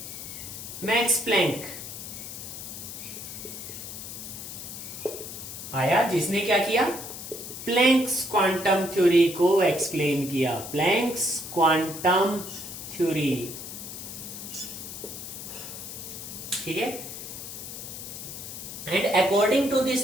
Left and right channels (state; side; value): noise; left; hiss, 9 dB below the sound